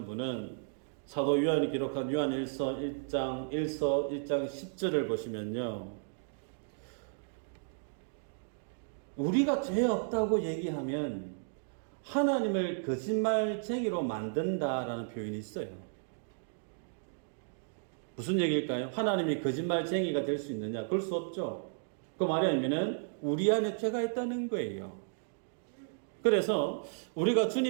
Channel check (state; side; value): silent; left; digital silence